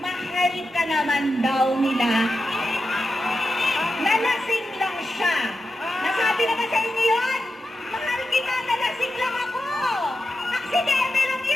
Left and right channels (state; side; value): normal; both; correlation 0.89